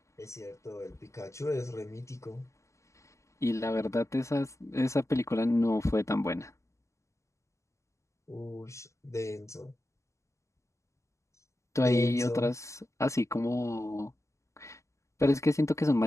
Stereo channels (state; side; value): late; right; 0.14 ms